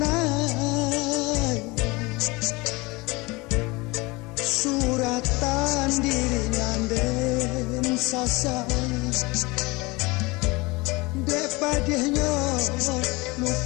suratan diringan den sasai depadihnya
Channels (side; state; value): right; quieter; 24.3 dB